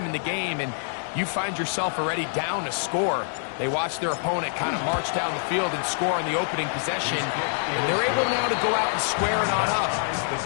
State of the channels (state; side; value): silent; right; digital silence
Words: in the game, and you find yourself already down a score. They watch their opponent kind of march down the field and score on the opening possession, and they're able now to go out and square it on up. It